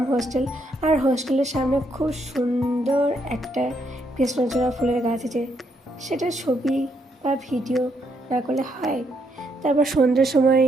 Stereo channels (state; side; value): normal; both; correlation 0.75